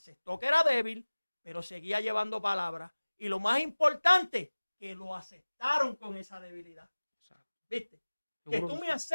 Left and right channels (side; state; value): both; inverted; correlation -1.00